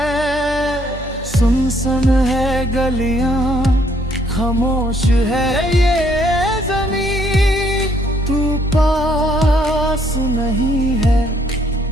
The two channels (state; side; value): normal; both; correlation 0.67